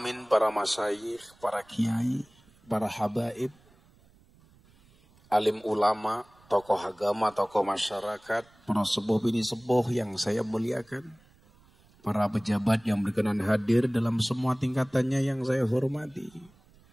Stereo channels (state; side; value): noise; right; rumble, 29 dB below the sound